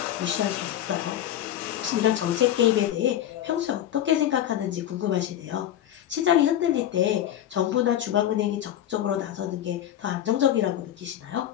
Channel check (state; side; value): quieter; right; 11.6 dB